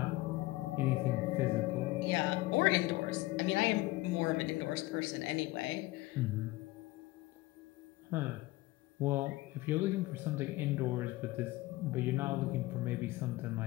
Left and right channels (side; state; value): right; quieter; 19.3 dB